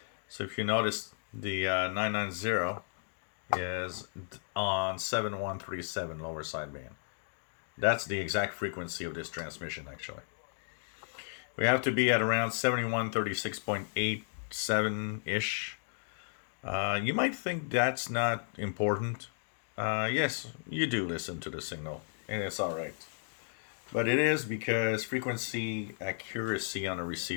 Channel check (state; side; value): silent; right; digital silence